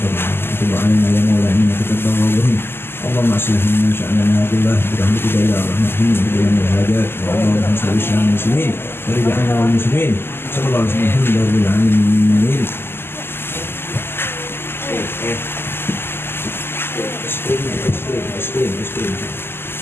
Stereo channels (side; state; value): right; late; 0.11 ms